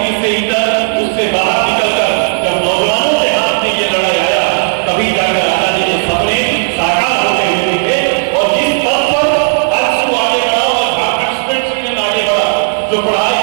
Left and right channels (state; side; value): silent; left; 69 dB below the other